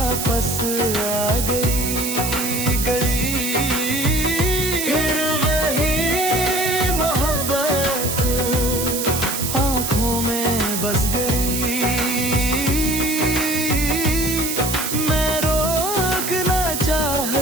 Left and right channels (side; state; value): right; noise; hiss, 3 dB below the sound